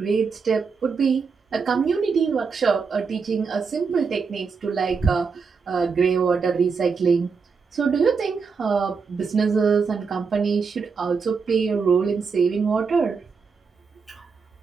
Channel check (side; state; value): left; quieter; 5.3 dB